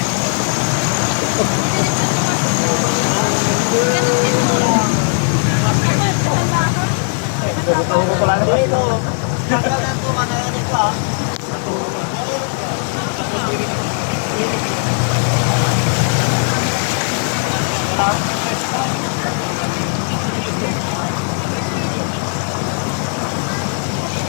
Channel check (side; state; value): right; silent; 55 dB below the other